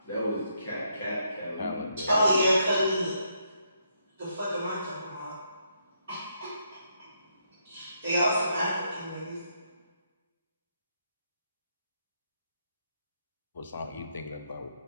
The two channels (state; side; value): inverted; both; correlation -0.76